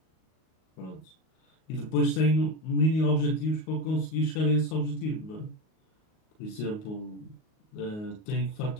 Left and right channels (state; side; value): late; right; 38 ms